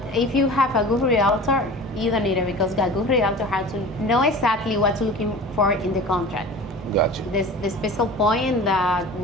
if you have a good realtor, You don't need it because a good realtor has to know exactly what's looking for in the contract. Gotcha. The special point that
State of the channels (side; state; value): both; normal; correlation 0.38